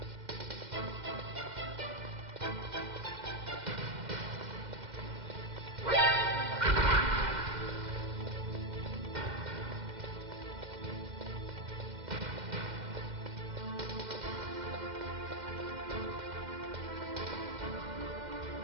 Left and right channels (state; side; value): late; left; 2.1 ms